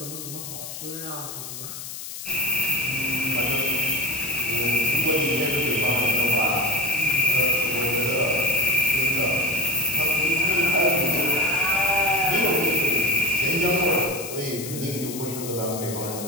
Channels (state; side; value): noise; left; hiss, 9 dB below the sound